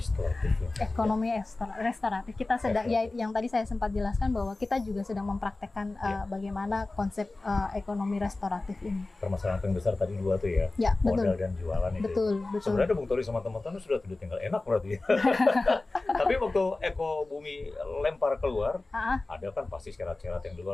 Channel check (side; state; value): right; quieter; 3.2 dB